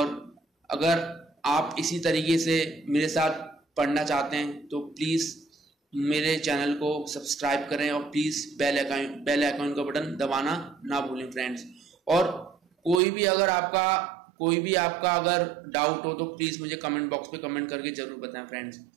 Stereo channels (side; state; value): left; drops out; at 13.0 s